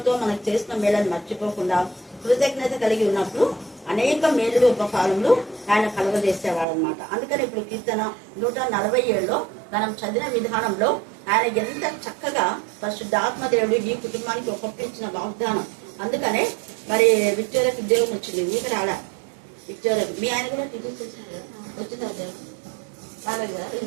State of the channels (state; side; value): drops out; left; at 6.7 s